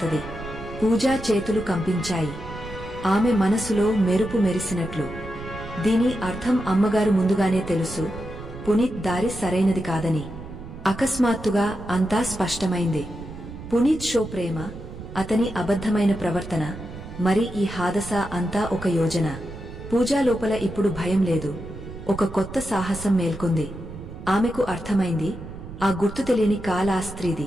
పూజా చేతులు కంపించాయి. ఆమె మనసులో మెరుపు మెరిసినట్లు. దీని అర్థం అమ్మగారు ముందుగానే తెలుసు, పునీత్ దారి సరైనది కాదని. అకస్మాత్తుగా అంతా స్పష్టమైంది. పునీత్ షో ప్రేమ, అతని అబద్ధమైన ప్రవర్తన, మరి ఈ హాదస అంతా ఒక యోజన. పూజా లోపల ఇప్పుడు భయం లేదు, ఒక కొత్త సాహసం మేల్కొంది. ఆమెకు అర్థమైంది, ఆ గుర్తు తెలియని కాల ఆ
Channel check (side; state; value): right; noise; rumble, 12 dB below the sound